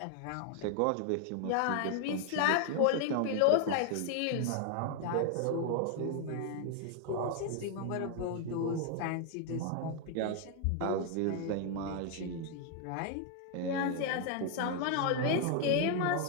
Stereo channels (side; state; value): both; different; correlation 0.00